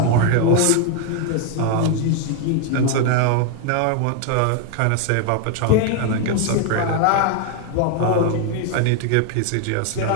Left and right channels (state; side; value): different; both; correlation 0.01